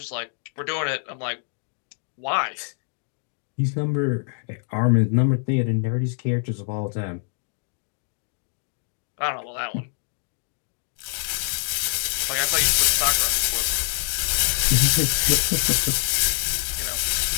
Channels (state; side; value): silent; right; digital silence